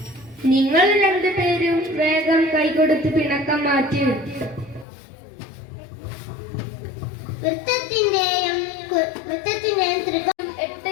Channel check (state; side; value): drops out; right; at 4.9 s